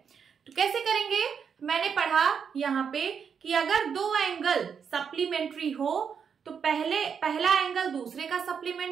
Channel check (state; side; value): quieter; left; 6.9 dB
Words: तो कैसे करेंगे? मैंने पढ़ा यहाँ पे कि अगर दो एंगल सप्लीमेंट्री हो तो पहला एंगल दूसरे का